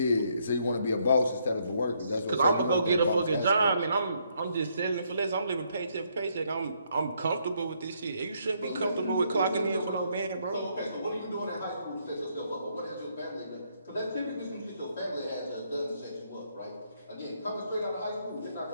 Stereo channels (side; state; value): both; inverted; correlation -0.72